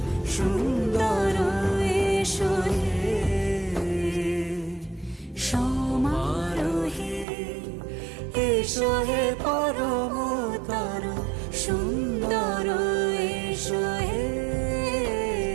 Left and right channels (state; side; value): drops out; left; at 7.2 s